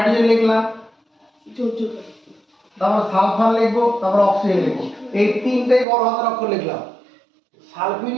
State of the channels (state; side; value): drops out; left; at 5.9 s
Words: লিখলাম, তারপর সালফার লিখবো, তারপর অক্সিজেন লিখবো, এই তিনটেই বড় হাতের অক্ষর লিখলাম।